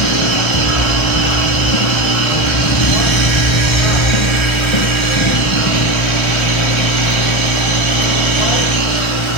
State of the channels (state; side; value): late; right; 1.3 ms